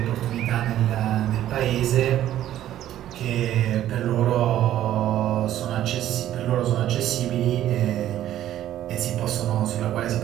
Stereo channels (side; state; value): left; quieter; 12.4 dB